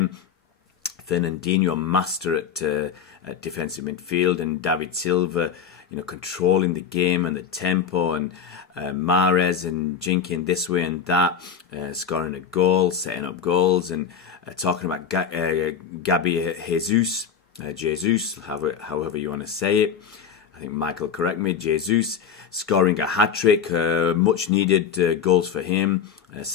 Fernandinho, a master at defensive midfield, and David Silva, controlling the game and the tempo, and Mahrez and jinking this way and that, scoring a goal, setting up goals, and talking about Gabi Jesus, however you want to say it. I think Michael correct me. Jesus scoring a hat-trick, much needed goals for him.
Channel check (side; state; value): right; quieter; 7.3 dB